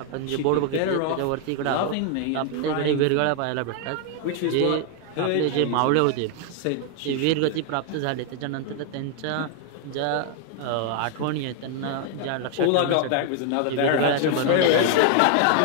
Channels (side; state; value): both; different; correlation 0.00